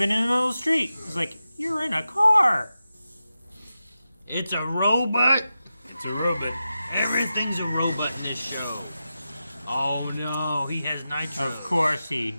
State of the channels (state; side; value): inverted; both; correlation -0.91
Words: in the middle of the street, it's like, you're in a car. It's a robot. It's a robot. Everything's a robot in this show. Oh no, he has nitro. Of course he